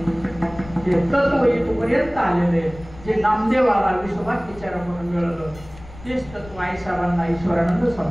ते तत्व इथपर्यंत आलेले, जे नामदेवाला विश्वभर विचारा म्हणून मिळालं, तेच तत्व आई साहेबांना ईश्वरानंद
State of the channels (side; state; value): left; noise; rumble, 18 dB below the sound